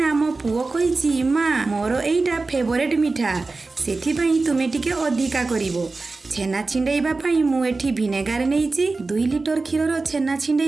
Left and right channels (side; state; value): left; quieter; 3.7 dB